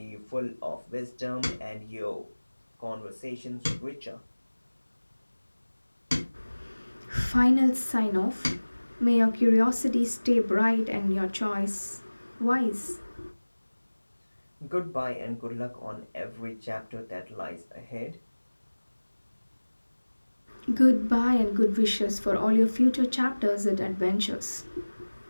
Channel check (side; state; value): both; inverted; correlation -1.00